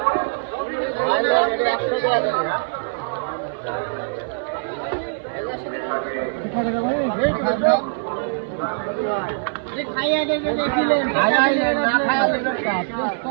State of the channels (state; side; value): silent; left; 59 dB below the other